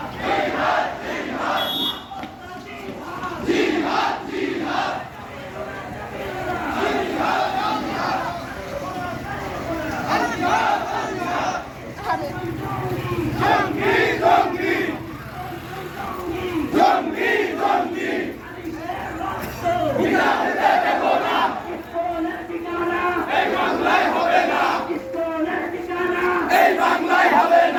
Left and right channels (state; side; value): identical; both; correlation 1.00